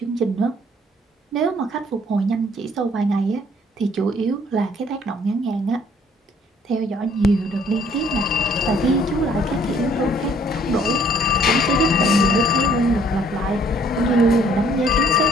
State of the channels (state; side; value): normal; both; correlation 0.60